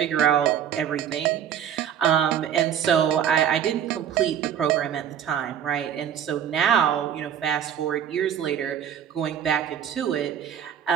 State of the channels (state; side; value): quieter; left; 9.2 dB